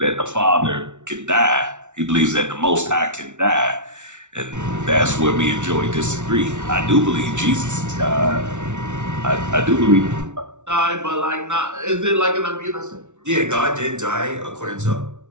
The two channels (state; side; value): late; left; 0.84 ms